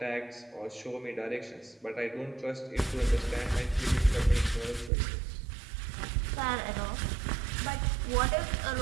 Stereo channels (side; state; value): left; drops out; at 4.9 s